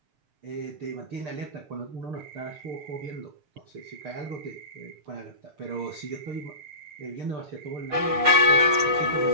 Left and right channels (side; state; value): left; late; 6.6 ms